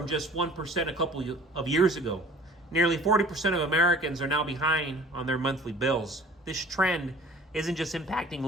just 1% a couple of years ago. Nearly 40% of Americans are now behind on their monthly bills. This trend isn't just impacting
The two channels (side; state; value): both; normal; correlation 0.49